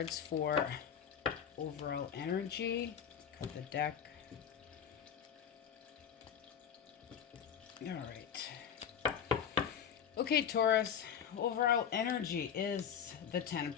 for overall energy. Cut the deck. All right. Okay, Taurus, overall energy is the Ten of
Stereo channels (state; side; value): quieter; right; 8.1 dB